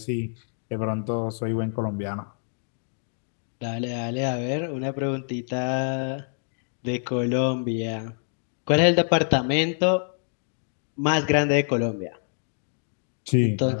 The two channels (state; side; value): silent; right; 61 dB below the other